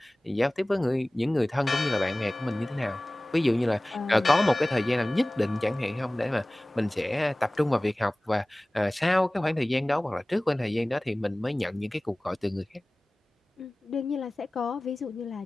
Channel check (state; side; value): normal; both; correlation 0.98